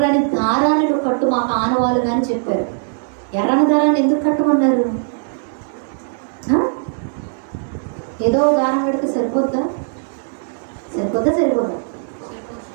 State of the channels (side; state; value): left; silent; digital silence